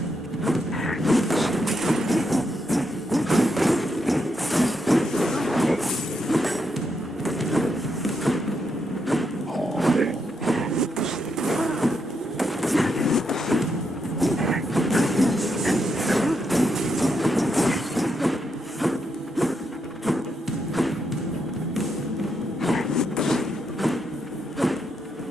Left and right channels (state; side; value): normal; both; correlation 0.81